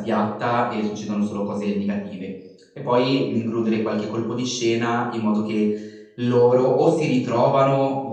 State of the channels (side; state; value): both; identical; correlation 1.00